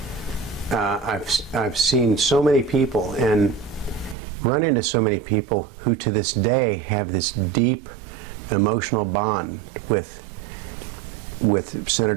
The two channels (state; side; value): drops out; left; at 4.2 s